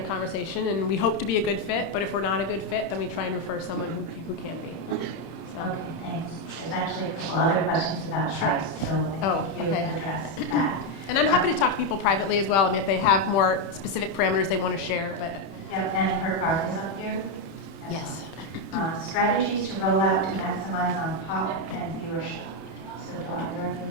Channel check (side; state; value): right; late; 31 ms